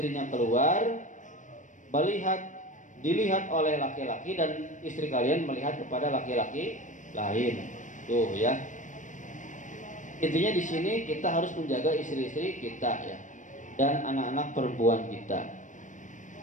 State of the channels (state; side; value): late; right; 0.37 ms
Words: keluar, dilihat oleh laki-laki dan istri kalian melihat kepada laki-laki lain. Tuh ya. Intinya di sini kita harus menjaga istri-istri kita ya dan anak-anak perempuan kita.